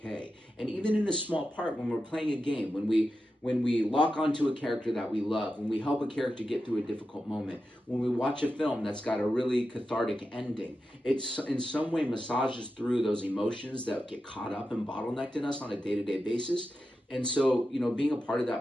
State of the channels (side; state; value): both; normal; correlation 0.90